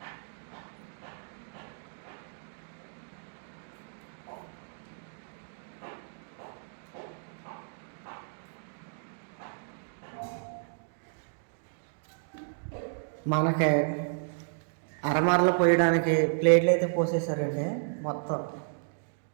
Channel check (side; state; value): left; silent; digital silence